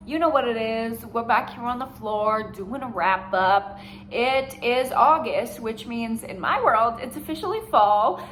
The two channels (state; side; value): identical; both; correlation 1.00